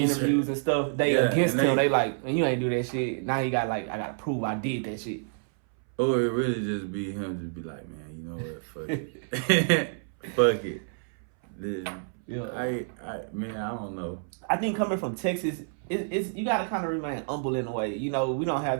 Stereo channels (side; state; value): left; silent; 59 dB below the other